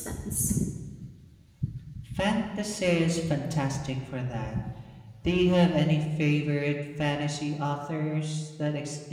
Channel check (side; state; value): both; identical; correlation 1.00